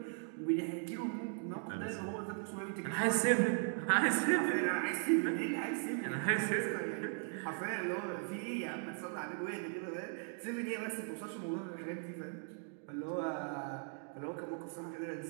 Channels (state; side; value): silent; left; 52 dB below the other